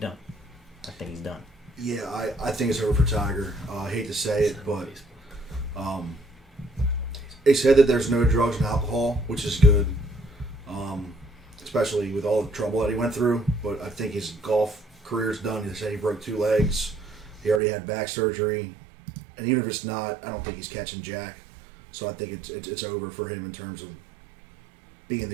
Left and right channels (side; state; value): left; drops out; at 17.6 s